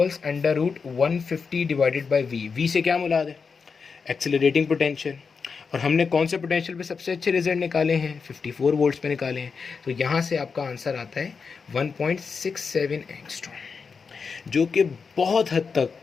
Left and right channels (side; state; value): right; quieter; 5.3 dB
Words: √150 divided by v। v से क्या मुराद है, एक्सेलरेटिंग पोटेंशियल। और हमने कौन से पोटेंशियल पे सबसे अच्छे रिजल्ट निकाले हैं, 54 वोल्ट्स पे निकाले हैं। तो यहाँ से आपका आंसर आता है 1.67 एंगस्ट्रॉम। जो कि बहुत हद तक